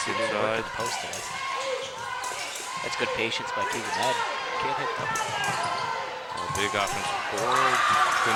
He didn't inside. work at the post tonight. That's good patience by Keegan Madden. Can't hit them. A big offensive board.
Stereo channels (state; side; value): identical; both; correlation 1.00